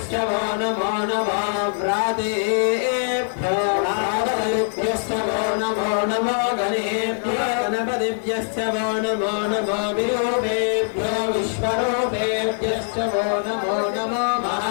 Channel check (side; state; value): right; silent; digital silence